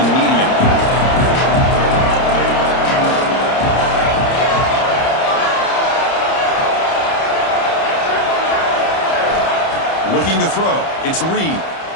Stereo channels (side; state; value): right; late; 30 ms